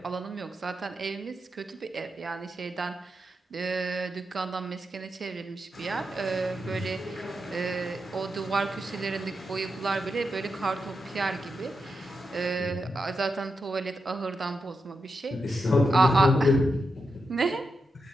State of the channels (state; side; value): normal; both; correlation 0.86